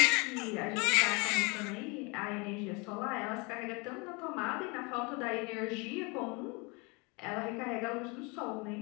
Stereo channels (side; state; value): right; quieter; 28.9 dB